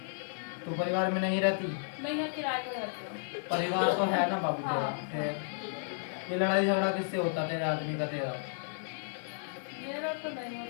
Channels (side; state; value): right; silent; digital silence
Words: तो परिवार में नहीं रहती? नहीं मैं किराए पर रहती हूँ। परिवार तो है ना बाबू तेरा। हाँ। फिर ये लड़ाई झगड़ा किससे होता तेरे आदमी का तेरा? मेरा तो नहीं